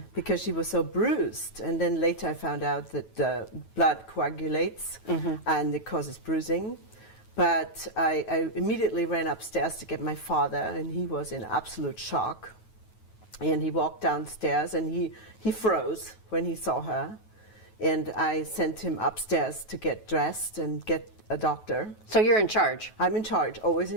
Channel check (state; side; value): late; right; 9.2 ms